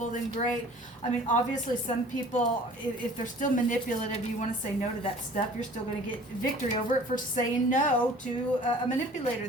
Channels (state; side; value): normal; both; correlation 0.48